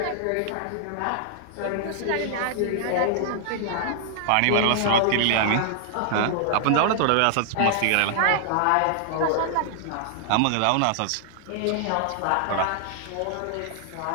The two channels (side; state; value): both; different; correlation -0.01